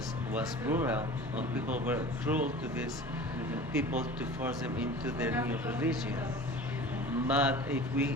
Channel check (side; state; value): both; normal; correlation 0.39